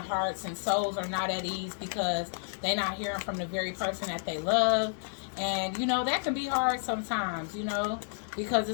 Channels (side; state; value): right; silent; 57 dB below the other